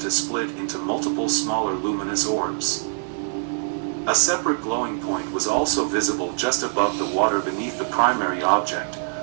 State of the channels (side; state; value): left; silent; digital silence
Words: to split into multiple smaller luminous orbs. A separate glowing point was also visible just above the water beneath the primary object,